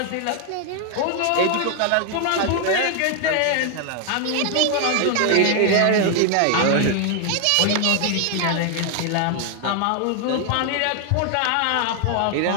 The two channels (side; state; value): both; different; correlation 0.00